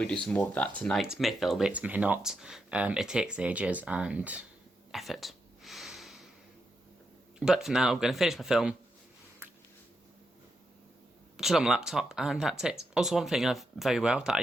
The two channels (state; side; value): normal; both; correlation 0.84